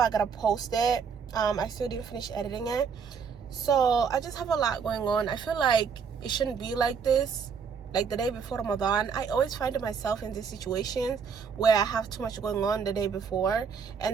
gotta post it. I still didn't finish editing it, so I just have a lot going on. I feel like it shouldn't be like this. Like the day before Ramadan, I always find myself in these situations where I have too much going on the day before,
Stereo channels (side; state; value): left; quieter; 6.3 dB